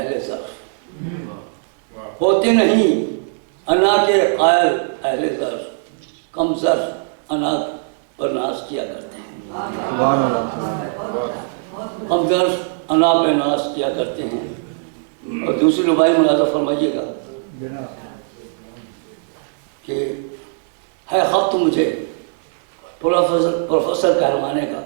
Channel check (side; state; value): left; silent; digital silence